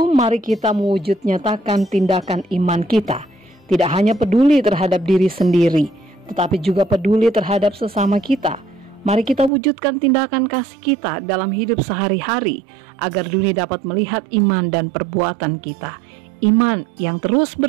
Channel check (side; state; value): left; drops out; at 9.5 s